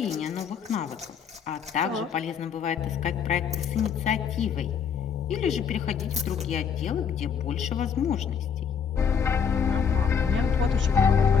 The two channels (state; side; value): quieter; right; 6.9 dB